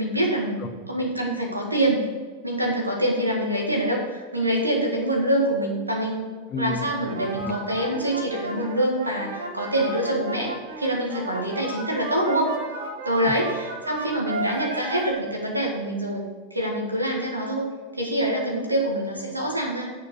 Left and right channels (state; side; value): inverted; both; correlation -0.39